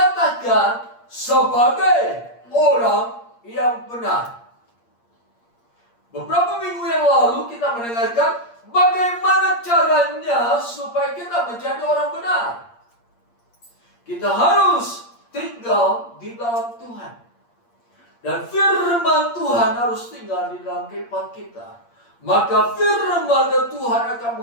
sebagai orang yang benar. Beberapa minggu yang lalu kita mendengarkan bagaimana caranya supaya kita menjadi orang benar. Kita harus tinggal di dalam Tuhan. Dan firman Tuhan harus tinggal di dalam kehidupan kita. Maka firman Tuhan akan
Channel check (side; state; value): right; late; 8.6 ms